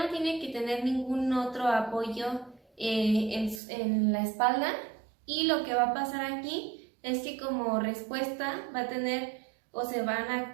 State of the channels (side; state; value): left; drops out; at 3.6 s